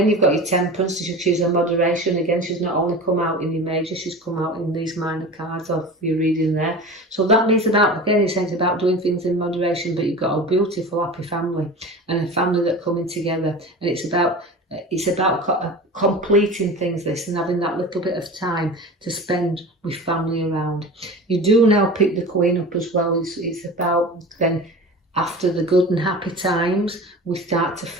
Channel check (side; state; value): both; normal; correlation 0.34